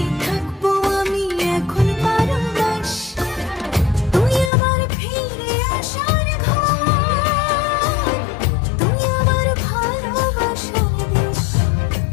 থাকবো আমি এখন 12 মাস। তুই আমার ফিরে আসার ঘর, তুই আমার ভালোবাসার দেশ।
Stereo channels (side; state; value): right; drops out; at 4.5 s